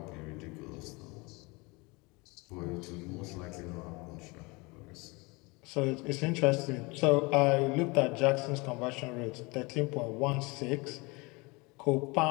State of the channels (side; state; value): right; quieter; 26.3 dB